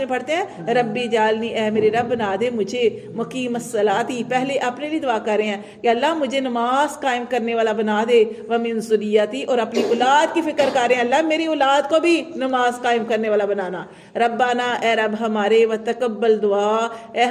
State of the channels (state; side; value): identical; both; correlation 1.00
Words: پڑھتے ہیں، ربی جالنی، اے میرے رب بنا دے مجھے مقیم الصلاۃ، پہلے اپنے لیے دعا کر رہے ہیں کہ اللہ مجھے نماز قائم کرنے والا بنا دے، ومن ذریتی، اور اپنی اولاد کی فکر کر رہے ہیں اللہ میری اولاد کو بھی نماز قائم کرنے والا بنانا۔ ربنا، اے رب ہمارے، وتقبل دعا، اے